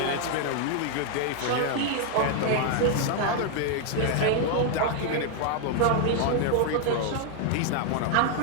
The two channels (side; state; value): both; different; correlation 0.00